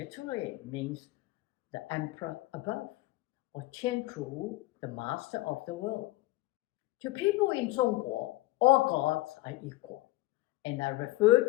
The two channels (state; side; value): quieter; right; 18.4 dB